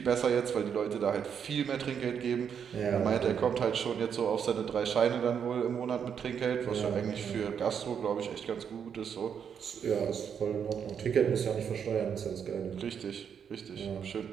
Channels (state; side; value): quieter; left; 7.6 dB